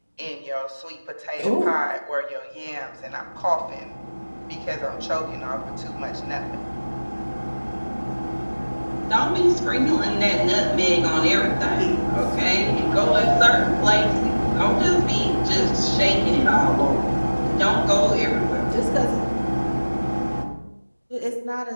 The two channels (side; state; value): both; inverted; correlation -1.00